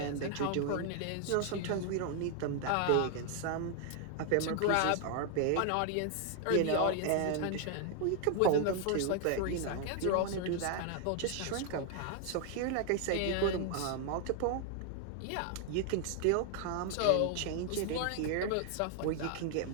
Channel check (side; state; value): both; different; correlation 0.00